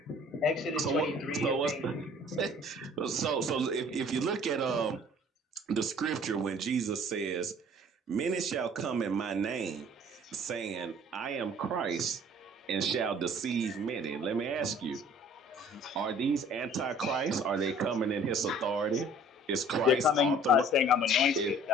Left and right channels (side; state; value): both; normal; correlation 0.52